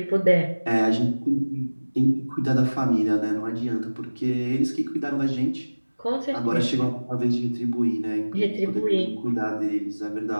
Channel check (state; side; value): inverted; both; correlation -1.00